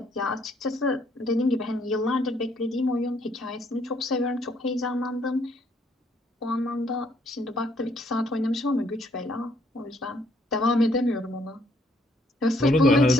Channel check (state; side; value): normal; both; correlation 0.67